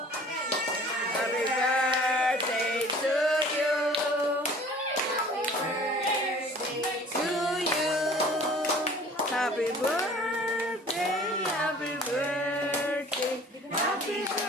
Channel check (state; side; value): normal; both; correlation 0.49